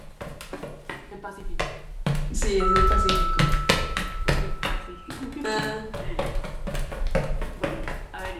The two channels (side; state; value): both; identical; correlation 1.00